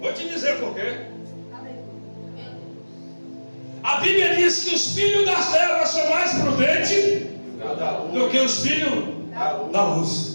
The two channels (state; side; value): inverted; both; correlation -1.00